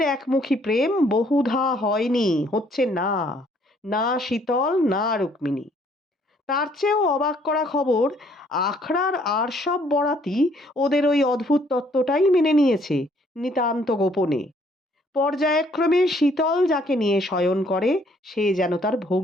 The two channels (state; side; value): normal; both; correlation 0.64